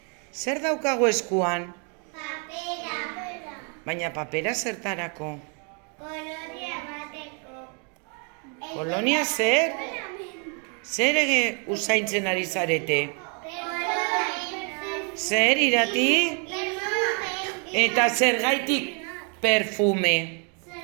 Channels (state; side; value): quieter; left; 37.9 dB